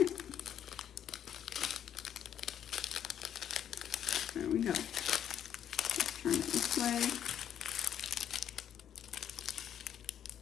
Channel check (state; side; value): quieter; right; 9.6 dB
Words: There we go. Let's turn it this way.